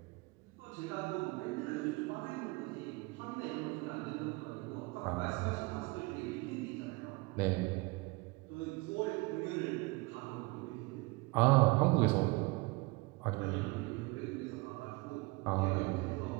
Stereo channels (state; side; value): quieter; left; 25.1 dB